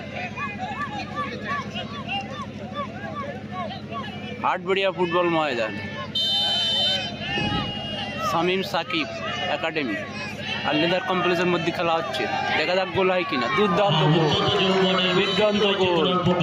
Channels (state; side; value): identical; both; correlation 1.00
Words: হাটবাড়িয়া ফুটবল ময়দান, শামীম সাকিব একাডেমি আর লেদার কমপ্লেক্সের মধ্যে খেলা হচ্ছে। দেখা যাক গোল হয় কিনা। দুর্দান্ত গোল, দুর্দান্ত গোল।